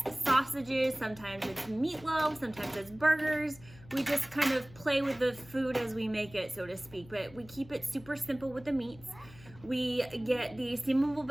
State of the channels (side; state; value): left; noise; hum, 21 dB below the sound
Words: sausages, sometimes it's meatloaf, sometimes it's burgers. We just kind of play with the food as we make it, so to speak. But we keep it super simple with the meats. We get the steamable